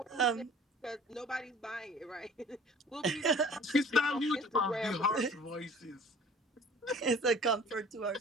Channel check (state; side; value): normal; both; correlation 0.48